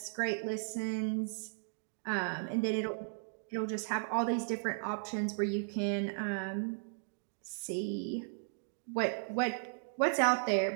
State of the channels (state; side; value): silent; left; digital silence